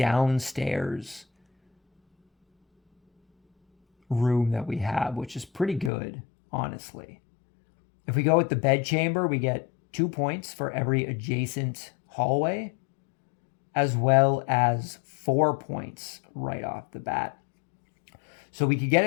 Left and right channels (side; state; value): right; drops out; at 5.9 s